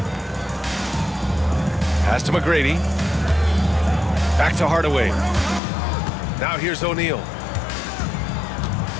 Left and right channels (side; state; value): right; drops out; at 5.6 s